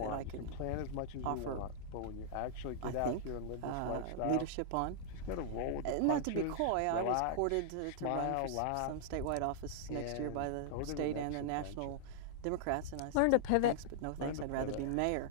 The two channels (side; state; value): both; different; correlation -0.01